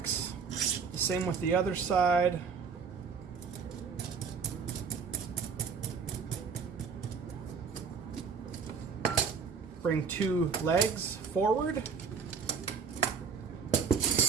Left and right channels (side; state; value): left; quieter; 5.9 dB